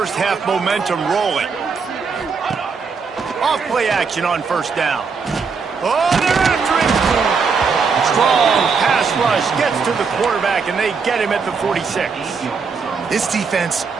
half momentum rolling. Off play action on 1st down. Oh, they're after him. Strong pass rush gets to the quarterback, and they get him at the 46. This defense,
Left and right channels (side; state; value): left; quieter; 5.3 dB